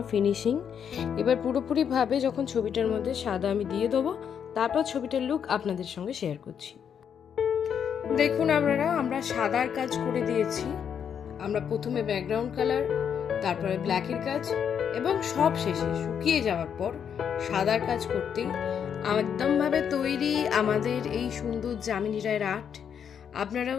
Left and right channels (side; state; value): right; quieter; 7.9 dB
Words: ফিনিশিং। এবার পুরোপুরিভাবে যখন ছবিটার মধ্যে সাদা আমি দিয়ে দেবো, তারপর ছবিটার লুক আপনাদের সঙ্গে শেয়ার করছি। দেখুন আমরা সাদার কাজ করে দিয়েছি। আমরা প্রথমে ব্যাকগ্রাউন্ড কালার, তারপরে ব্ল্যাকের কাজ, এবং সব শেষে শুকিয়ে যাওয়ার পর সাদার কাজ করতেই একদমভাবে তৈরি আমাদের এই সুন্দর যামিনী রায়ের আর্ট।